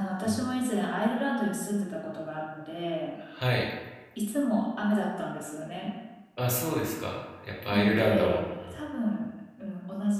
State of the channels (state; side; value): identical; both; correlation 1.00